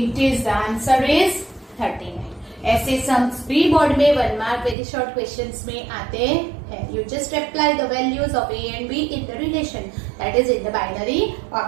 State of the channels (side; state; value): left; drops out; at 4.8 s